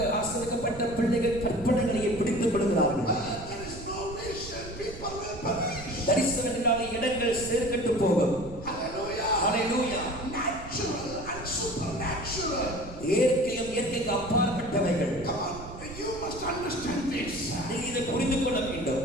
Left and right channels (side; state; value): right; noise; rumble, 14 dB below the sound